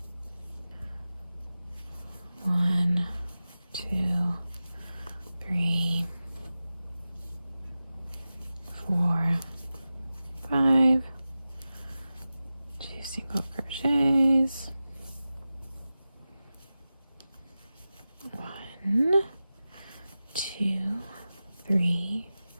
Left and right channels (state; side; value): inverted; both; correlation -0.94